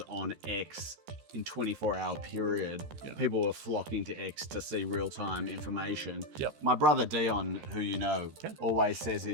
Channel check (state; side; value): late; left; 13 ms